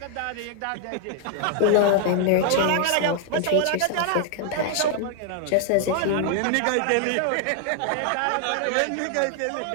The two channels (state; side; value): different; both; correlation 0.00